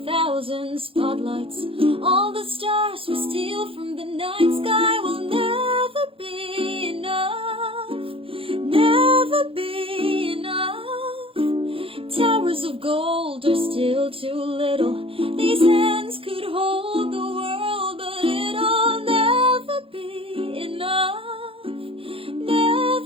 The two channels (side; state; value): left; late; 0.27 ms